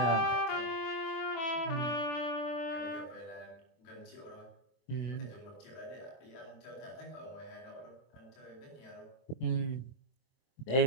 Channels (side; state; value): right; late; 24 ms